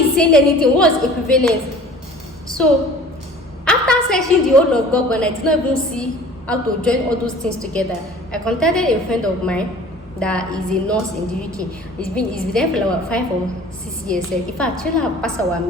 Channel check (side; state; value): both; normal; correlation 0.46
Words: is saying anything. What's equivalent? So after searching the whole of Google, I did not even see how to join all those things together. I contacted a friend of mine that is a nurse in the UK. He's been there for about 5 or 6 years. In fact, I have passed our